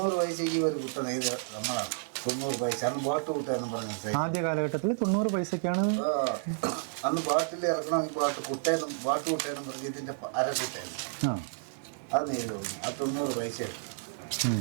പൈസയ്ക്ക് ഒരു കുട്ട നെയ്ത് നമ്മളാണ്. 90 പൈസ അന്ന് ബോട്ട് കൂട്ടാന്ന് പറഞ്ഞ ആദ്യ കാലഘട്ടത്തിൽ 90 പൈസക്കാണ് അന്ന് ബോട്ടിൽ ഇറക്കണമെങ്കിൽ ബോട്ട് കൂട്ടേന്നും പറഞ്ഞ് ഇതിന്റെ അരക്കിട്ടായിരുന്നു. അത് നെയ്ത് തോന്നി. അത് 90 പൈസ.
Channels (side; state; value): left; silent; 57 dB below the other